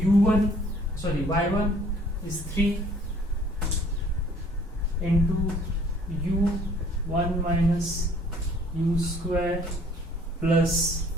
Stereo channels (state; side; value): normal; both; correlation 0.57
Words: is 3 into u 1 minus u square plus